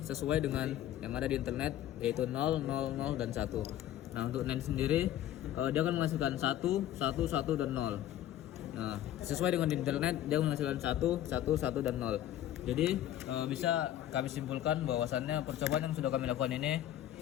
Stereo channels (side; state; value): right; quieter; 12.3 dB